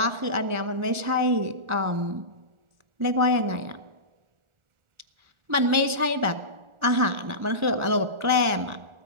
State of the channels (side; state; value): left; late; 1.4 ms